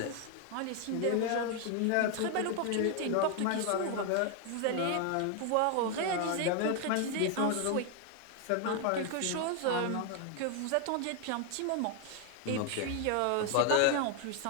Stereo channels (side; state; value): both; different; correlation 0.01